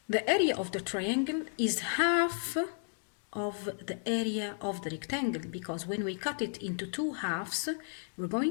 the area of the triangle is half of the area of the rectangle, because when we cut it into two halves, we're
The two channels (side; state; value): right; silent; 56 dB below the other